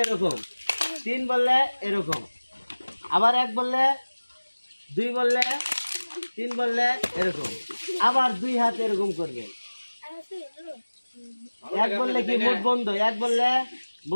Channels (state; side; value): inverted; both; correlation -1.00